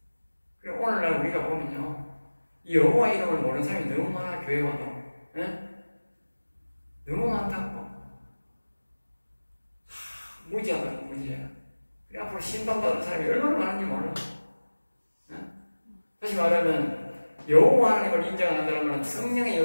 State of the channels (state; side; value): inverted; both; correlation -1.00